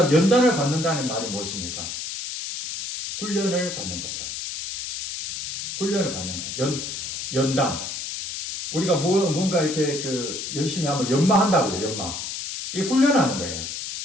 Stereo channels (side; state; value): left; noise; hiss, 6 dB below the sound